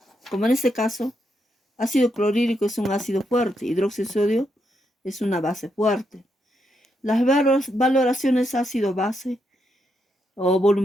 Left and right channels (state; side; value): normal; both; correlation 0.80